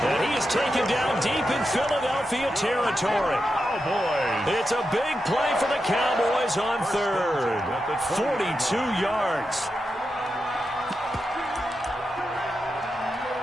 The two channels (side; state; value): both; normal; correlation 0.88